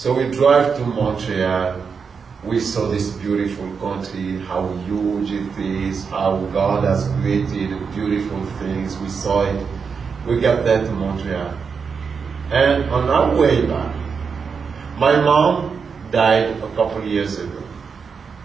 we drive to Montreal. We saw this beautiful country, how huge it is, how God has created beautiful things. We saw it. We got there to Montreal. And on our way back, my mom died a couple of years ago.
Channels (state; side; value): quieter; left; 5.8 dB